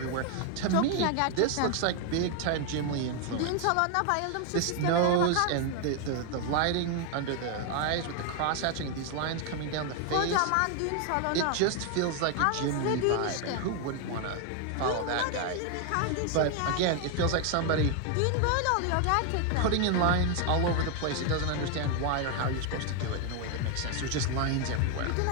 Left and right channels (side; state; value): both; different; correlation 0.00